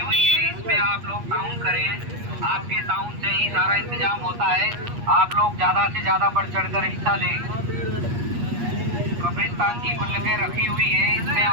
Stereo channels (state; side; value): late; left; 8.4 ms